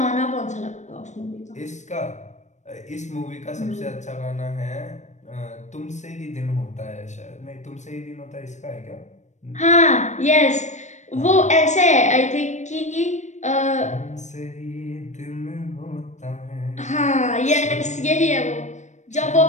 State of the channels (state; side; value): late; right; 0.34 ms